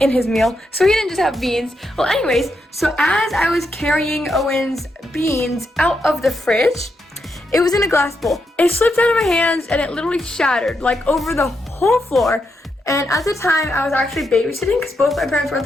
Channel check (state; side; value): normal; both; correlation 0.82